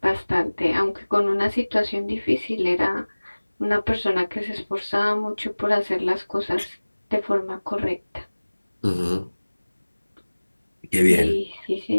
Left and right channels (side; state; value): both; inverted; correlation -1.00